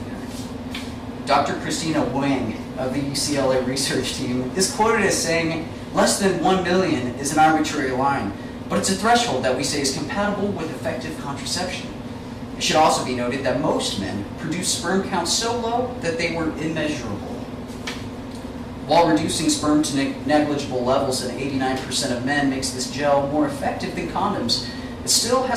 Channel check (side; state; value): both; identical; correlation 1.00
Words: Dr. Christina Wang of the UCLA research team is quoted as saying, "Less than 1 million is an arbitrary line, but it's a threshold that we say is compatible with effective contraception." It should also be noted that most men produce sperm counts so low that they were immeasurable. While reducing sperm to negligible levels in 89% of men makes this gel more effective than condoms, it still